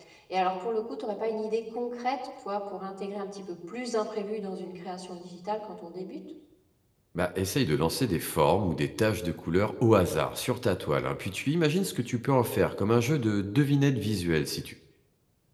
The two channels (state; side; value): identical; both; correlation 1.00